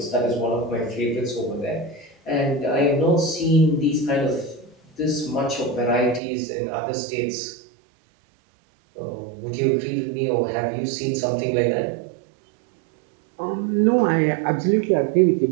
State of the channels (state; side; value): drops out; left; at 6.2 s